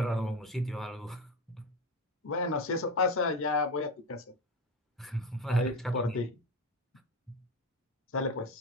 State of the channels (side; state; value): both; normal; correlation 0.21